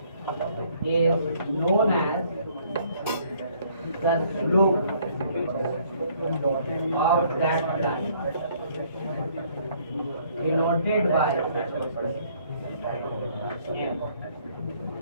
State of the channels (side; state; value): both; inverted; correlation -0.62